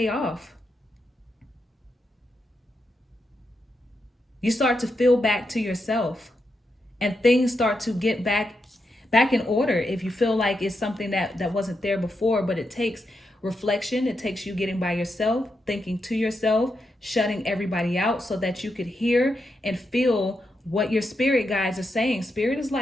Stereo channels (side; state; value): both; normal; correlation 0.84